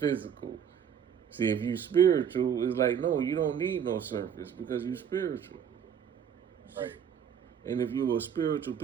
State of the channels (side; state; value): left; quieter; 8.2 dB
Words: See, if you spiritual, it's like, no, you don't need no surface because you spiritual. Right. And if you're a spiritual